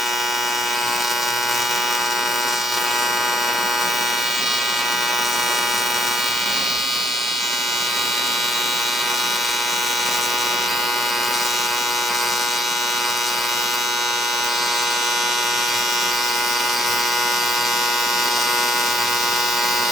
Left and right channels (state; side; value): normal; both; correlation 0.71